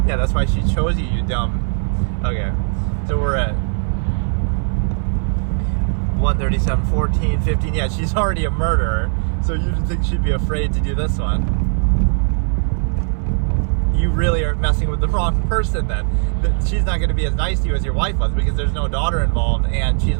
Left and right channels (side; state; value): left; silent; 60 dB below the other